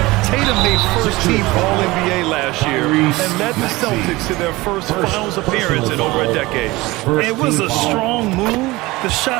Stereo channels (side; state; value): left; quieter; 20.7 dB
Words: Tatum made first-team All-NBA last year and led the Celtics to their first finals appearance in over a decade. It was a strong move. The